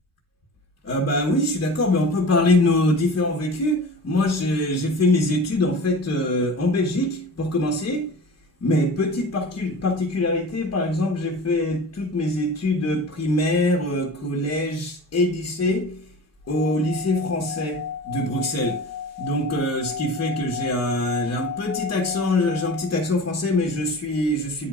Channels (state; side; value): normal; both; correlation 0.37